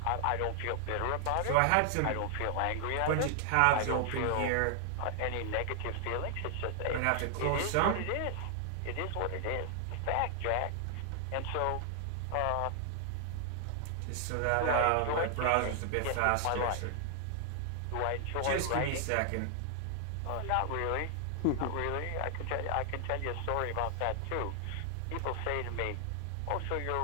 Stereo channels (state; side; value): different; both; correlation 0.00